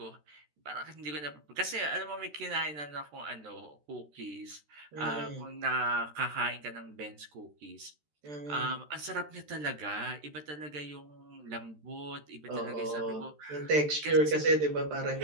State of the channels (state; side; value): late; left; 13 ms